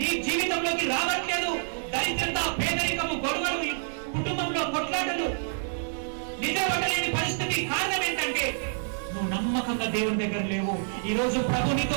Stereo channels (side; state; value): left; silent; 60 dB below the other